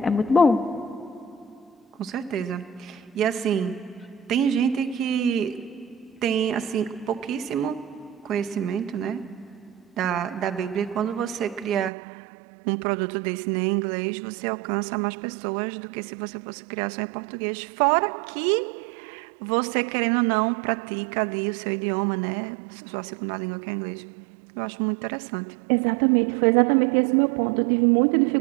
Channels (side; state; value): left; drops out; at 11.9 s